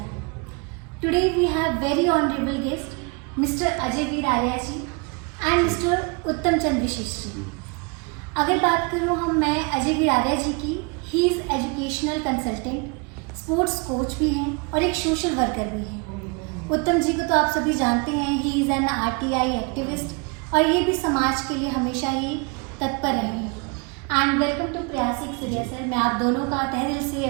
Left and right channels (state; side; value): quieter; left; 31.6 dB